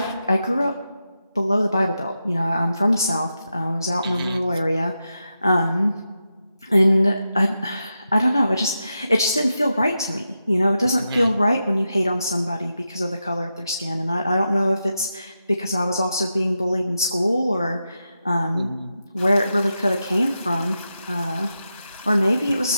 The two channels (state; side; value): inverted; both; correlation -0.88